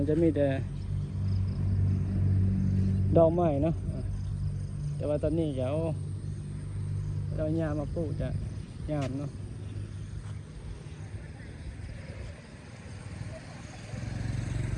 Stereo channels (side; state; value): both; identical; correlation 1.00